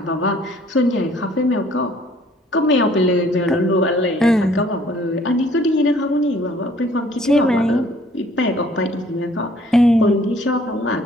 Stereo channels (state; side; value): normal; both; correlation 0.59